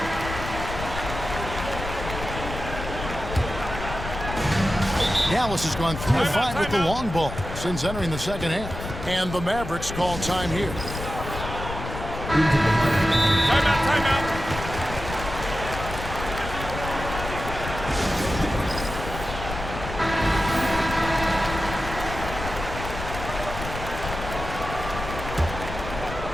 Dallas has gone 3 of 5 with the long ball since entering the second half. And the Mavericks call time here. Timeout.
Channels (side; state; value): left; noise; rumble, 8 dB below the sound